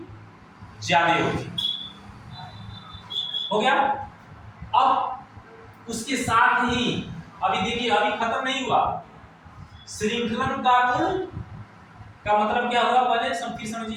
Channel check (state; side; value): identical; both; correlation 1.00